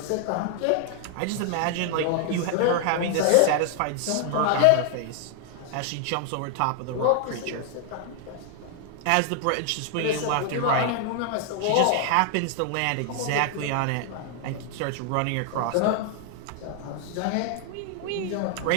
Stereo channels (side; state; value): both; different; correlation 0.00